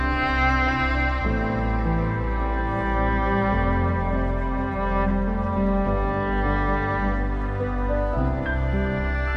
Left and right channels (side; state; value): both; identical; correlation 1.00